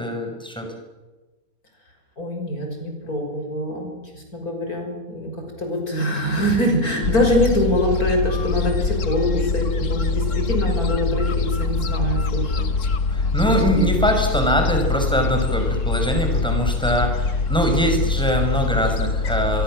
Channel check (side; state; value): both; normal; correlation 0.14